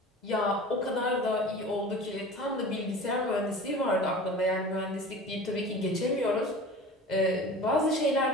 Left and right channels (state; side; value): normal; both; correlation 0.38